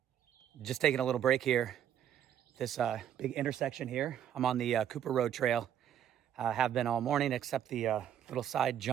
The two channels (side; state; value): left; quieter; 9.9 dB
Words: Just taking a little break here. This big intersection here. I'm on the Cooper Road Trail. Have been all morning except the little side